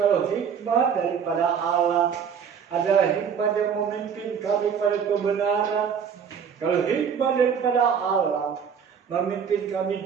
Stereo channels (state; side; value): quieter; left; 7.2 dB